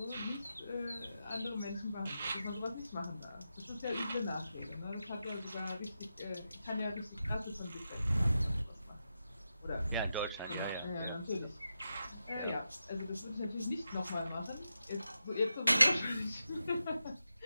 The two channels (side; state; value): both; inverted; correlation -0.88